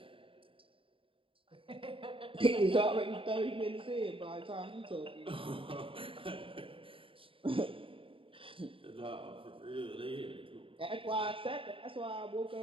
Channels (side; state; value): left; late; 0.26 ms